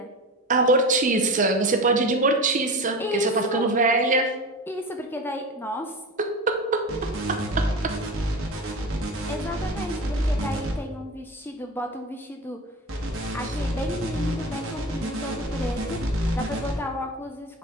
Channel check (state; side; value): normal; both; correlation 0.28